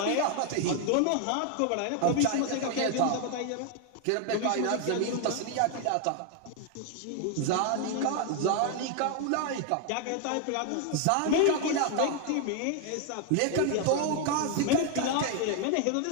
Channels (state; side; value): different; both; correlation 0.00